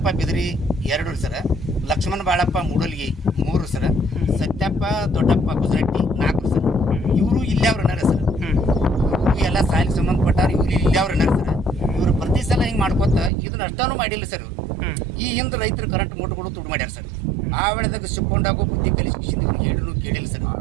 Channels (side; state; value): left; drops out; at 13.3 s